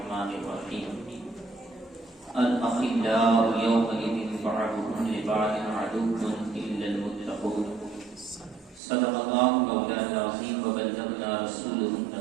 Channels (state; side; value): drops out; left; at 8.8 s